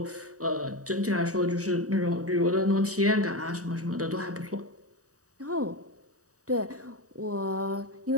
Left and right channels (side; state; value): left; late; 0.66 ms